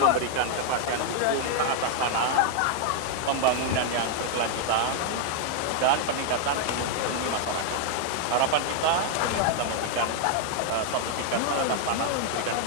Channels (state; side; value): different; both; correlation 0.00